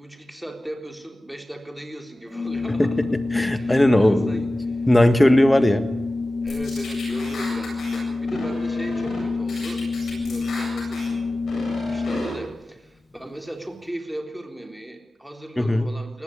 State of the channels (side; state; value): both; normal; correlation 0.96